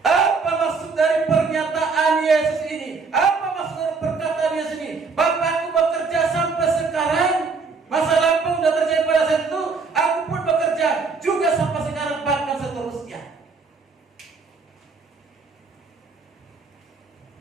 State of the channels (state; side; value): quieter; left; 4.6 dB